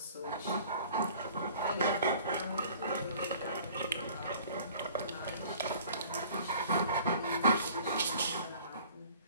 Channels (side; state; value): both; inverted; correlation -0.50